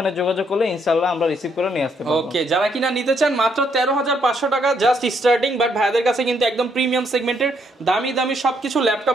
যোগাযোগ করলে ইনশাআল্লাহ আমরা রিসিভ করে নিয়ে আসতে পারবো। ওকে, যারা কিনা নিতে চান মাত্র 13500 টাকা জাস্ট স্টার্টিং। বাট ভাইদের কাছে কিন্তু একদম প্রিমিয়াম সেগমেন্টের দামি দামি সবকিছু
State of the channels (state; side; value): normal; both; correlation 0.72